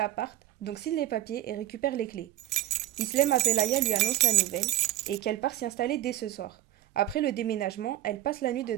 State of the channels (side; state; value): left; quieter; 14.4 dB